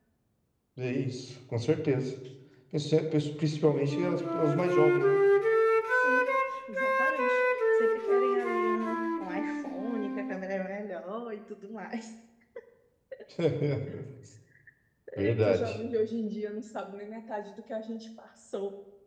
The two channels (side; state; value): both; identical; correlation 1.00